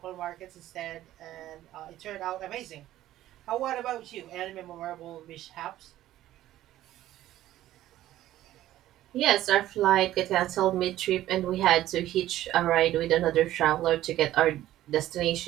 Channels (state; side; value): quieter; left; 14.0 dB